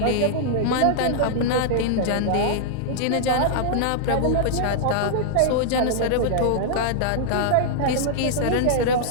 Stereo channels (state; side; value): different; both; correlation -0.01